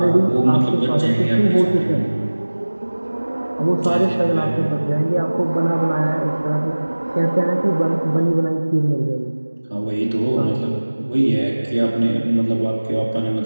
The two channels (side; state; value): both; inverted; correlation -1.00